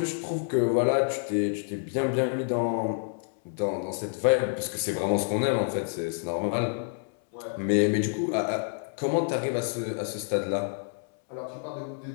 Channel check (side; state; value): right; silent; 59 dB below the other